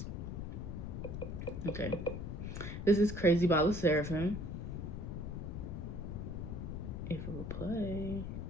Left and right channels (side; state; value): left; noise; rumble, 5 dB below the sound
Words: Okay. This is Crazy by La Seraphim. If it will play.